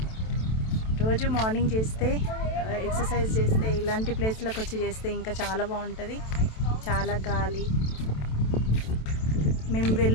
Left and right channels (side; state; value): right; late; 27 ms